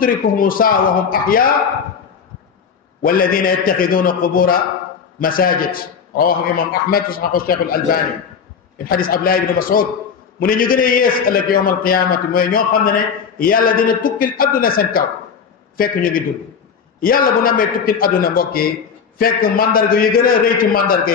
saa wa hum ahyaa walladina yattaxiduuna qubura masajid rawahu imam ahmad wa saxahu cheikh al albani min xadis Abdullah ibn Mas'ud mu ne ñu gën a yées ëllëg yowmal qiyaamati mooy ñoo xam ne yàlla dina tukkil adduna seen kaw fekk ñu ngi dund yàlla bu namee tukkil adduna mbokk yi fekk mandarga yu gën a rëy ci mandarga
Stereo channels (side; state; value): right; quieter; 6.5 dB